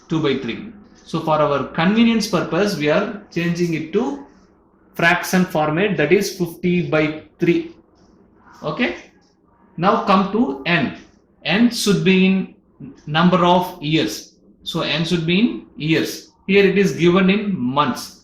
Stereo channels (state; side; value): identical; both; correlation 1.00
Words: 2 by 3. So for our convenience purpose, we are changing it to fraction format, that is 50 by 3. Okay, now come to n. N should be in number of years, so n should be in years. Here it is given in